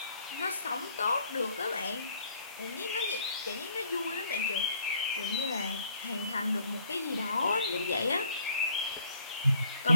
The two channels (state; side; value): inverted; both; correlation -0.63